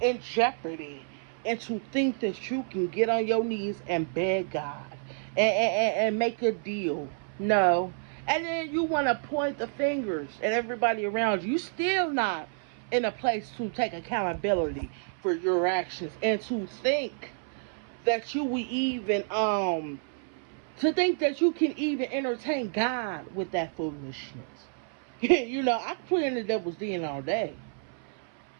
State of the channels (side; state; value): left; silent; 58 dB below the other